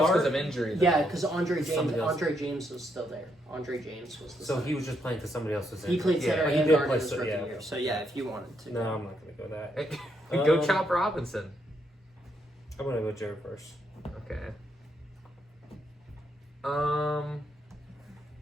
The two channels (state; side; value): normal; both; correlation 0.77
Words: because start? of injury. Though. Yeah, because Andre Somebody else. James was still there. Andre James was the. So center. he was just playing because somebody else was in. He played Yeah, center but he and did guard play in his so- rookie yeah. year. So yeah, if you wanted to. No, I'm not going to go that. Go Um, Chop Robinson. I'm going to go Jared first. Okay.